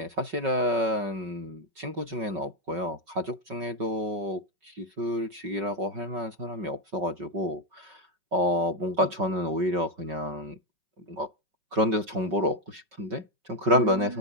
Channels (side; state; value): left; late; 5.3 ms